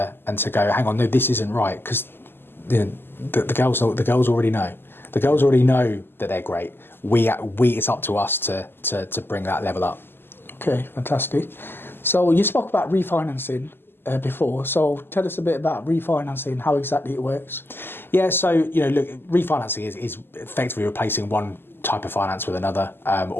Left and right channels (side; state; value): right; late; 0.10 ms